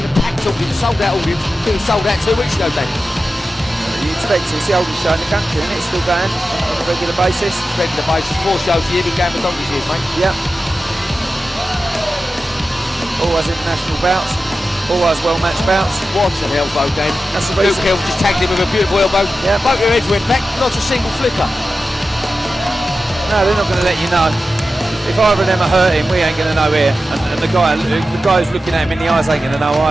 the packed audience, sold out audience. I think it was sold out 2 weeks ago, Dan. You expect it, it's the oldest show in the country, isn't it? It's still going on a regular basis. 4 shows a year, been going for donkey's years, mate. Yep. Always international bouts, always well-matched bouts. What an elbow, Dan. That's the Luke reason. Hill just tagged him with a beautiful elbow. Yeah. Both your heads went back, not a single flicker. No, they're not going to let you know. If either of them are hurting, we ain't going to know here. And the guy who's looking at him in the eyes ain't going to know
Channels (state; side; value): normal; both; correlation 0.93